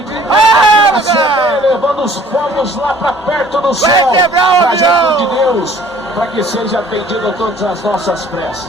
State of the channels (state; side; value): normal; both; correlation 0.54